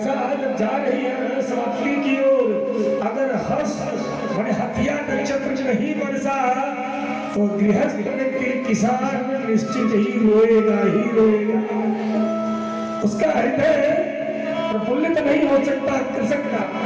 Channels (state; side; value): identical; both; correlation 1.00